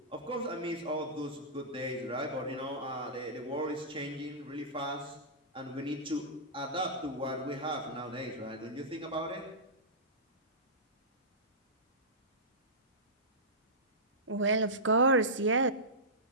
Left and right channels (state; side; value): normal; both; correlation -0.17